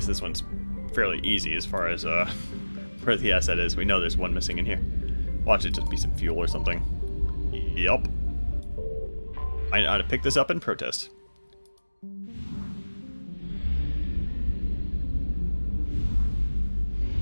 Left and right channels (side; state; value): both; inverted; correlation -1.00